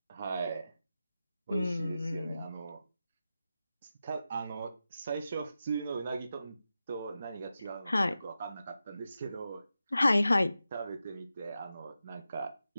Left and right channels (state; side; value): inverted; both; correlation -0.91